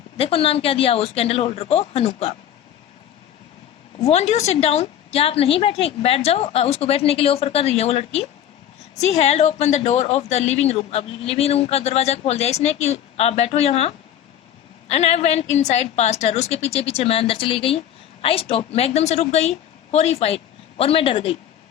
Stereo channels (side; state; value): right; quieter; 10.4 dB